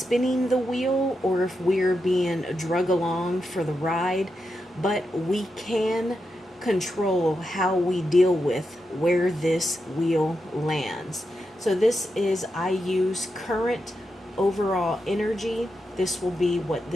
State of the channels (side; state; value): both; normal; correlation 0.87